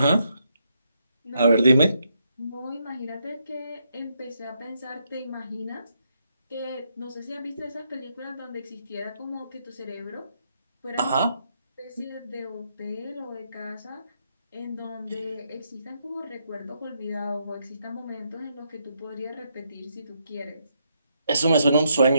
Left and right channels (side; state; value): both; inverted; correlation -0.77